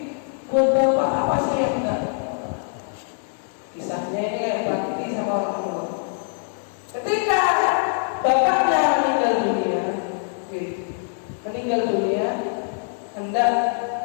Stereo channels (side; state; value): right; silent; 63 dB below the other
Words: buat bapak apa sih yang enggak? Kisahnya ini kayak bakti sama orang tua. Ketika bapaknya meninggal dunia, hendak